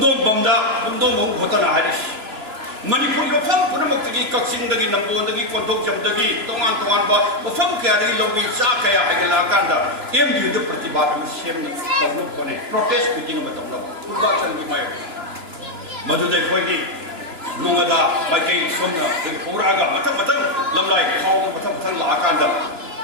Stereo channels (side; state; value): left; late; 2.9 ms